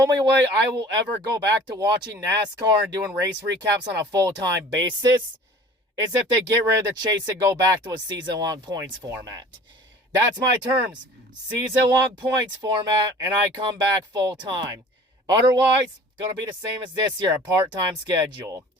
way I will ever go back to watching NASCAR and doing race recaps on a full-time basis is if they get rid of the chase and go back to a season-long points format. That's my terms. Season-long points format, and I come back full-time. Otherwise, going to be the same as this year, a part-time schedule.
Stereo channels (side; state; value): both; normal; correlation 0.46